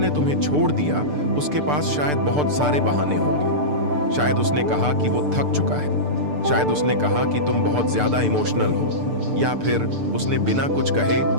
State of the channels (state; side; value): late; left; 6.8 ms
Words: तुम्हें छोड़ दिया उसके पास शायद बहुत सारे बहाने होंगे। शायद उसने कहा कि वो थक चुका है, शायद उसने कहा कि तुम बहुत ज्यादा इमोशनल हो, या फिर उसने बिना कुछ कहे